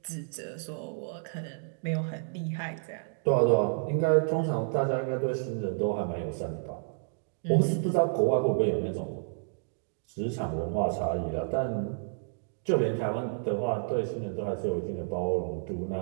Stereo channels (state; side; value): silent; left; digital silence